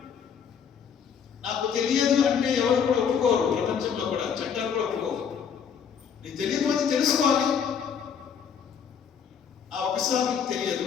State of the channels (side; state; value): right; quieter; 7.3 dB